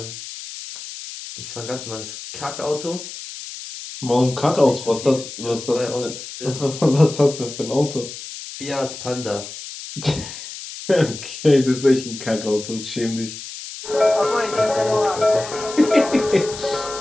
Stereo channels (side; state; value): left; noise; hiss, 11 dB below the sound